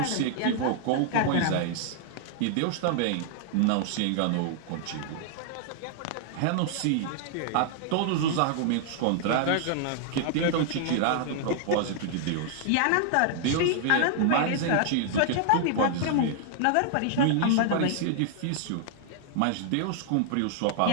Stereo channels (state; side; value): different; both; correlation -0.01